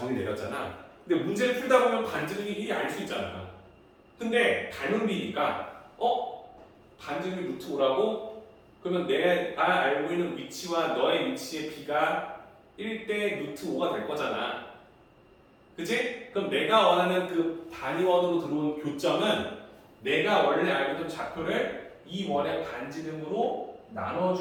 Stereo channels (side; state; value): both; identical; correlation 1.00